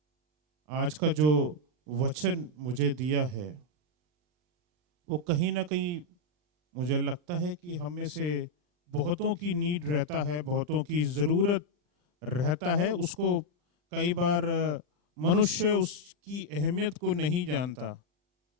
आज का जो वचन मुझे दिया है वो कहीं ना कहीं मुझे लगता है कि हम में से बहुतों की नीड रहता है, बहुतों की ज़रूरत रहता है। उसको कई बार मनुष्य उसकी अहमियत को नहीं जानता।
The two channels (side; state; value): left; late; 40 ms